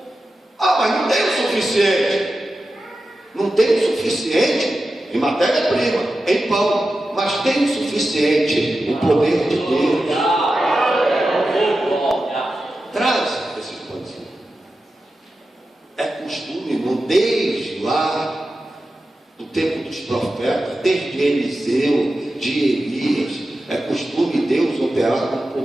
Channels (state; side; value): normal; both; correlation 0.92